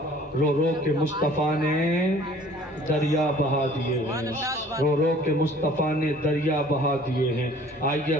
رو رو کے مصطفیٰ نے دریا بہا دیے ہیں، رو رو کے مصطفیٰ نے دریا بہا دیے ہیں۔ آئیے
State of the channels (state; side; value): normal; both; correlation 0.52